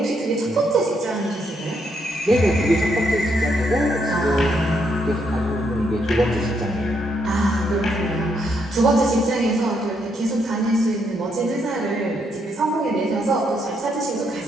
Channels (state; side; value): normal; both; correlation 0.76